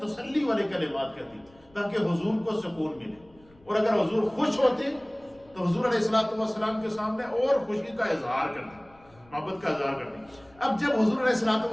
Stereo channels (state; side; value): noise; left; rumble, 28 dB below the sound